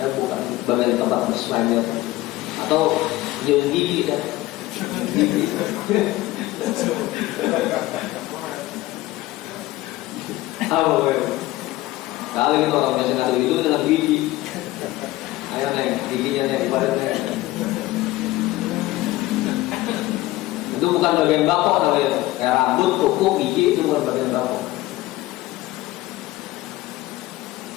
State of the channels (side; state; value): right; quieter; 17.6 dB